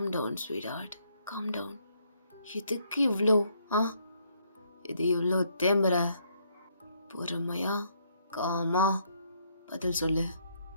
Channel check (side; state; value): both; inverted; correlation -0.71